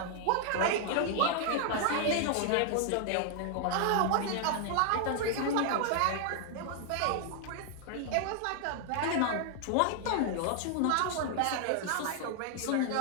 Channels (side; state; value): both; different; correlation 0.00